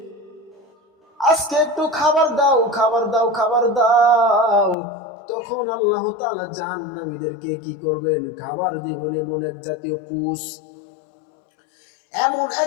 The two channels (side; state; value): right; drops out; at 4.8 s